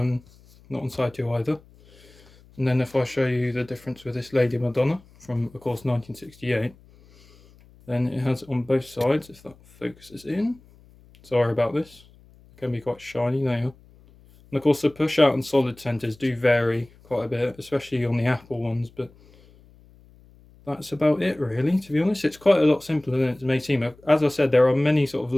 on side 2 either. And then if I show you the difference with this Lady Madonna from, of course, 1968, then it has on both sides, if that focuses in. Sorry about this. It can be quite shiny now. And of course, the push out and solid centers do vary quite a bit, especially on the Apple ones, but that's about it really, to be honest. It's quite a lot simpler than it may seem. As I said, there are many sort of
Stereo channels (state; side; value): noise; left; hum, 27 dB below the sound